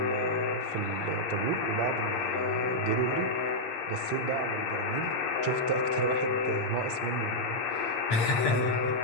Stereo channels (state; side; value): late; right; 8.6 ms